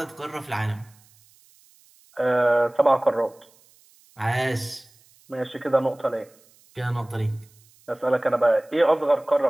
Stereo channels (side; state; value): right; noise; hiss, 30 dB below the sound